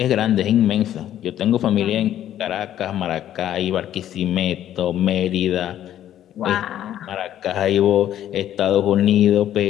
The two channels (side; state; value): right; quieter; 11.6 dB